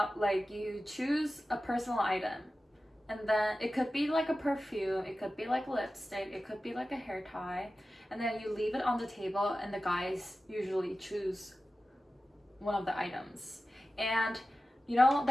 like you choose a personal item, and then it could be like a perfume, it could be like lipstick, it could be like a hair tie, and then you leave it on the table, and the guys usually choose one of the items. And you know,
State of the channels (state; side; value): normal; both; correlation 0.94